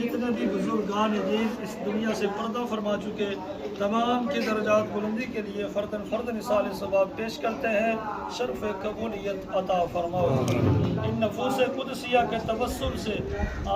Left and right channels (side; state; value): both; identical; correlation 1.00